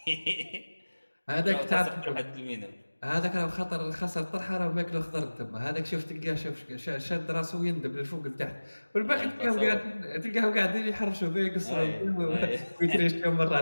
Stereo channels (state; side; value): inverted; both; correlation -1.00